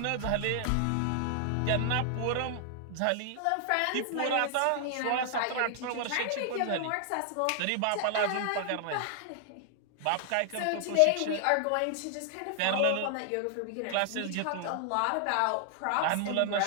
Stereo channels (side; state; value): both; different; correlation 0.00